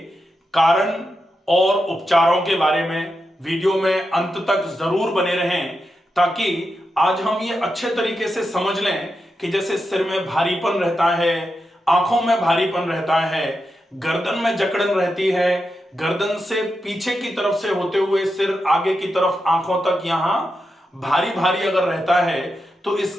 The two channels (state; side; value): normal; both; correlation 0.87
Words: कारण और उपचारों के बारे में। वीडियो में अंत तक जरूर बने रहें ताकि आज हम ये अच्छे तरीके से समझ लें कि जैसे सिर में भारीपन रहता है, आंखों में भारीपन रहता है, गर्दन में जकड़न रहती है, गर्दन से पीछे की तरफ से होते हुए सिर आगे की तरफ आंखों तक यहां भारी भारी अगर रहता है तो